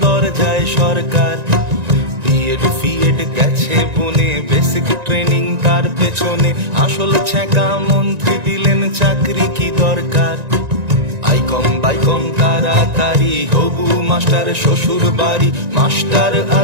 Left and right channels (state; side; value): late; left; 1.9 ms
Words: দরজায় সরকার। বিএড ফিএড গেছে বনে, বেসিক ট্রেনিং তার পেছনে, আসল ছ্যাঁকা মন্ত্রী দিলেন চাকরি কি দরকার। বাইকম তাড়াতাড়ি হবু মাস্টার শ্বশুর বাড়ি, মাস্টার